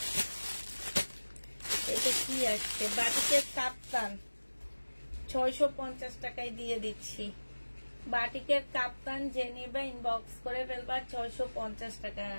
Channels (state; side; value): inverted; both; correlation -1.00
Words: এটা কি আসছে বাটিকে কাপ্তান 650 টাকায় দিয়ে দিচ্ছি। বাটিকের কাপ্তান যে নেবে ইনবক্স করে ফেলবা, 650 টাকা।